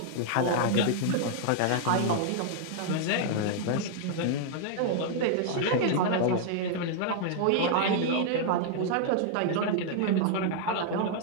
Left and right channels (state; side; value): different; both; correlation -0.01